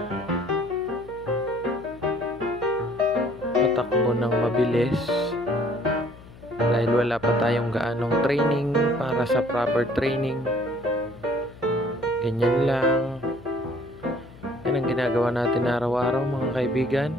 patakbo ng mabilis dahil wala pa tayong gaanong training para sa proper training. Ganyan lang. Yan ang ginagawa natin araw-araw mga kaibigan.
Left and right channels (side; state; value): left; noise; hum, 20 dB below the sound